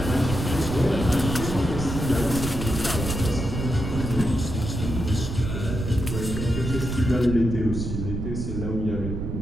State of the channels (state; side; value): noise; right; rumble, 4 dB below the sound